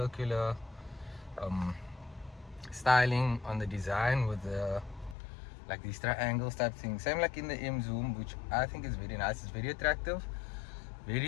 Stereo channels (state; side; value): drops out; right; at 5.2 s